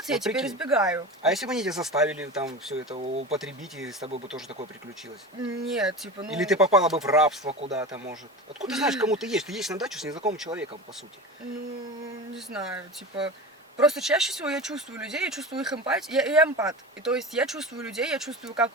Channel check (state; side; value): normal; both; correlation 0.29